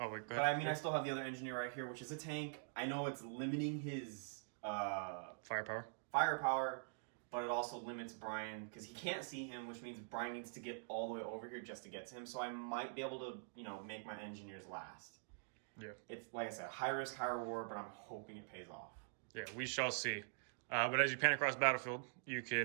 wait, go ahead. But I mean, I still have the other engineer right here, which is a tank. I know it's limiting his Firepower. firepower, but it also limits Brian because he can't see him, which means Brian needs to get all the way over here just to get to him. So I might be able to, make my engineers last. Yeah. It's, like I said, high risk, high reward, but I'm hoping it pays off. Yeah, we shall see. But as you pan across the battlefield, you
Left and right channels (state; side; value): silent; left; digital silence